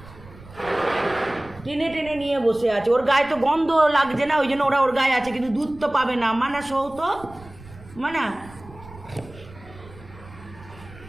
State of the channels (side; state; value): right; noise; rumble, 19 dB below the sound